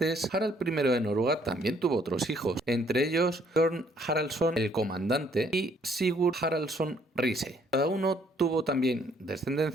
Harald I de Noruega también tuvo otros hijos, entre ellos Bjorn Haraldsson el Comandante y Sigurd Haraldsson Riise. Cada uno tuvo también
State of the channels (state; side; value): normal; both; correlation 0.65